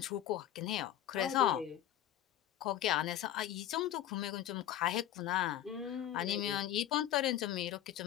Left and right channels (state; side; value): quieter; right; 12.2 dB